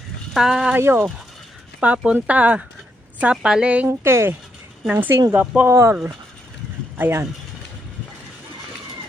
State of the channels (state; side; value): normal; both; correlation 0.78